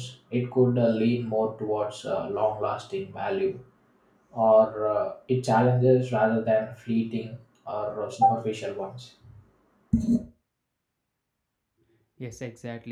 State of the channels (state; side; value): identical; both; correlation 1.00